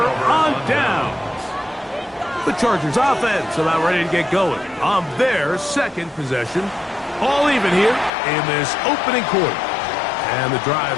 on down. The Chargers offense about ready to get going on their second possession. All even here in this opening quarter. And the drive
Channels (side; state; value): right; drops out; at 8.1 s